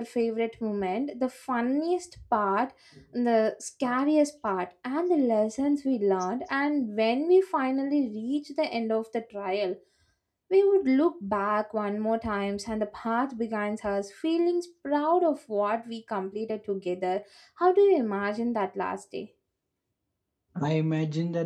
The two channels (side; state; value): both; identical; correlation 1.00